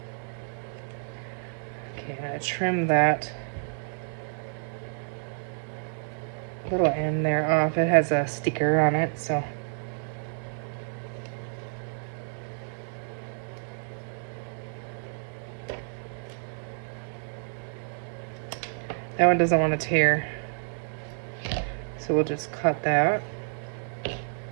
Okay, I'm gonna trim that little end there off. It has a sticker on it, so. That one doesn't want to tear. So we'll just cut that.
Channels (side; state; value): left; silent; 58 dB below the other